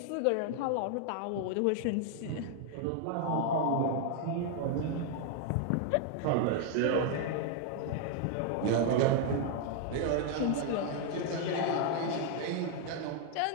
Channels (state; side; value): different; both; correlation 0.00